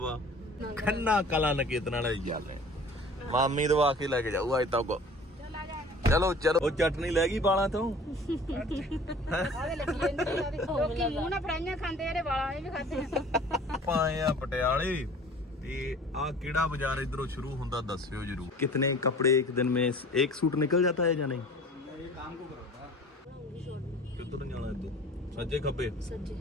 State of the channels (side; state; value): both; normal; correlation 0.46